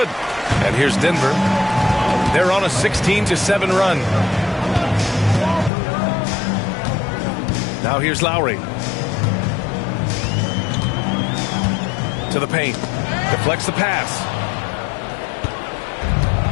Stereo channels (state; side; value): drops out; right; at 5.7 s